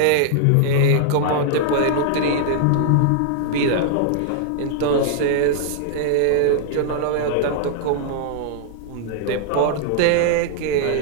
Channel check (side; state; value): both; different; correlation -0.01